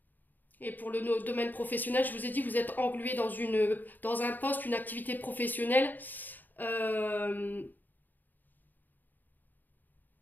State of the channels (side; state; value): right; late; 0.088 ms